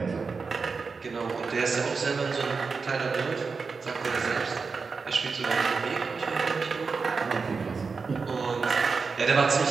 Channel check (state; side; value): quieter; left; 4.8 dB